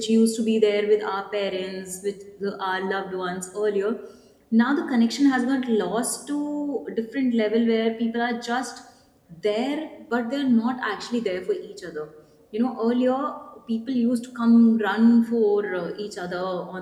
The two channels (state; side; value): identical; both; correlation 1.00